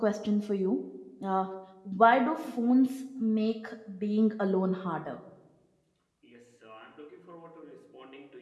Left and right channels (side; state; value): both; identical; correlation 1.00